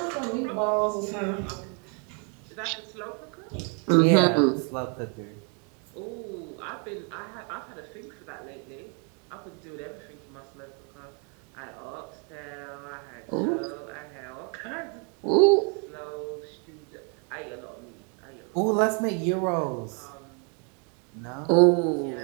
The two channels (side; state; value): left; quieter; 37.7 dB